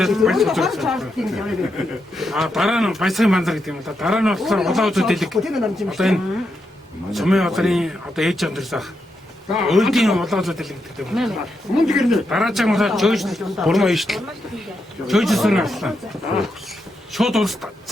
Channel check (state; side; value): normal; both; correlation 0.83